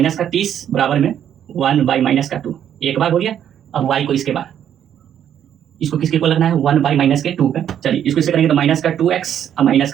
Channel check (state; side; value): quieter; left; 9.7 dB